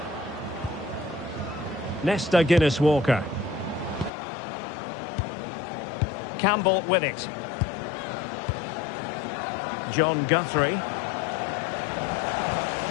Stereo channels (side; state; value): right; drops out; at 4.1 s